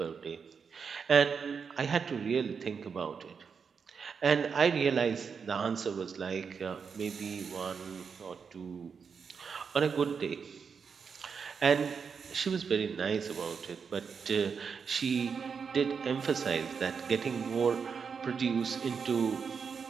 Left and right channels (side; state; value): left; quieter; 6.1 dB